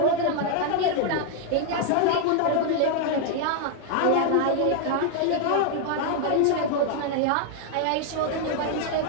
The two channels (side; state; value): both; different; correlation 0.00